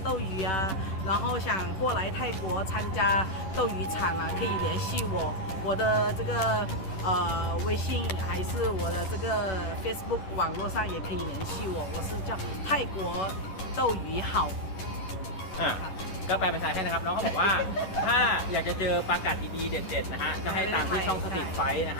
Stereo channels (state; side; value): late; right; 11 ms